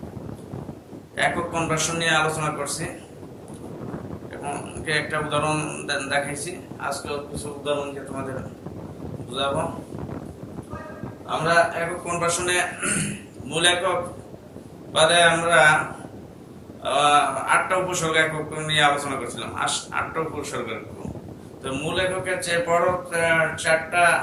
একক কনভার্সন নিয়ে আলোচনা করছি এবং একটা উদাহরণ দেখাইছি। আজকে কিছু উদাহরণ দিয়ে তোমাদের বুঝাবো। আমরা একক কনভার্সনে মূল একক বাদে আমরা 8টা উপসর্গ একক নিয়ে আলোচনা করছিলাম। 8টা উপসর্গ একক। তো মূল এককের চেয়ে বড় 4টা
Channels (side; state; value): both; identical; correlation 1.00